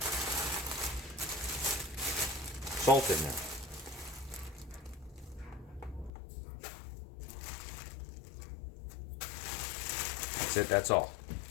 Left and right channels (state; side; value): drops out; right; at 6.1 s